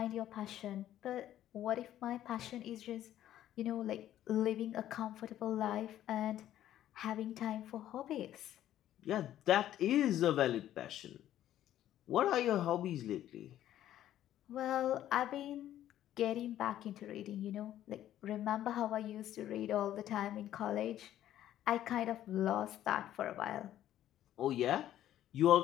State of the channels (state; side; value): quieter; right; 12.3 dB